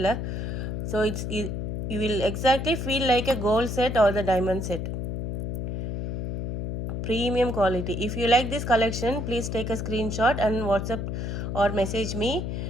So you will exactly feel like a gold set or the diamond set. Premium quality. If you like this collection, please take a screenshot and WhatsApp or message me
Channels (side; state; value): left; noise; hum, 3 dB below the sound